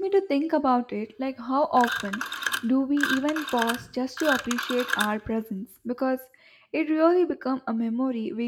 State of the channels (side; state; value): both; identical; correlation 1.00